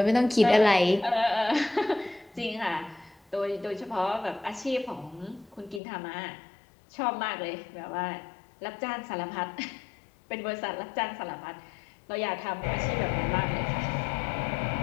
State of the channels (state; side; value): drops out; right; at 5.8 s